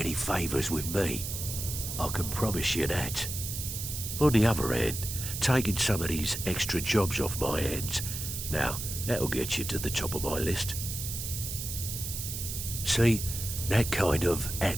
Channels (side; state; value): right; noise; hiss, 5 dB below the sound